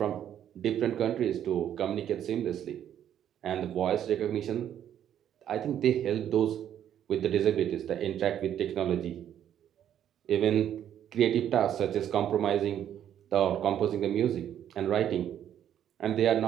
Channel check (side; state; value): left; quieter; 10.2 dB